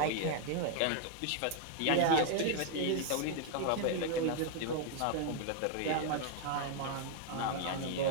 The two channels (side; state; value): both; different; correlation 0.00